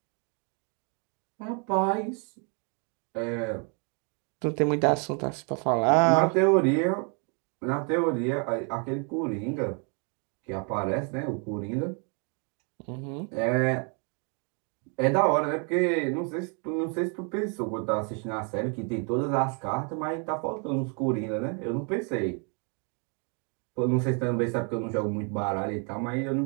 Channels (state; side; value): quieter; left; 37.5 dB